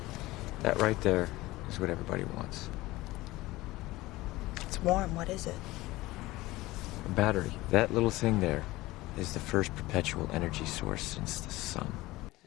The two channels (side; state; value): right; quieter; 19.0 dB